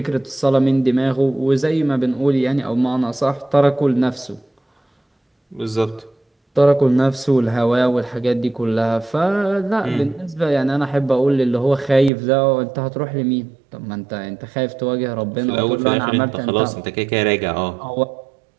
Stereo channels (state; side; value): drops out; left; at 12.1 s